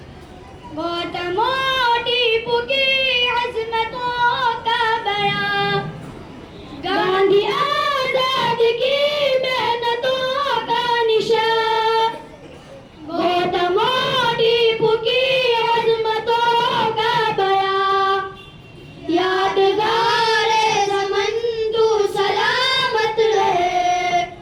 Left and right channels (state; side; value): identical; both; correlation 1.00